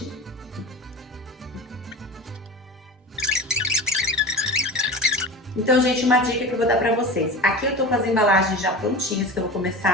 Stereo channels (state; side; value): normal; both; correlation 0.32